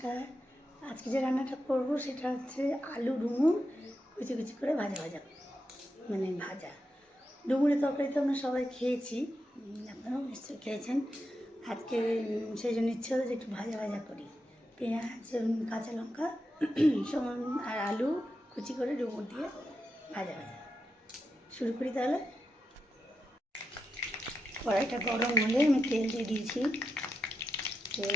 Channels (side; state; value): both; normal; correlation 0.87